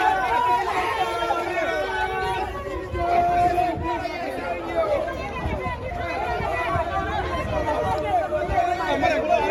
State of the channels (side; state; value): both; identical; correlation 1.00